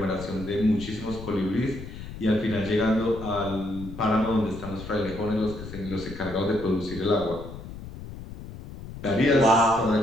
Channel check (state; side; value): noise; left; rumble, 12 dB below the sound